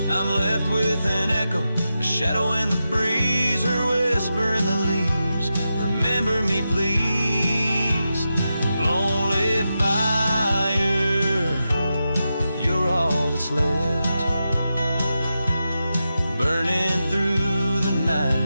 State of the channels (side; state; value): both; inverted; correlation -0.89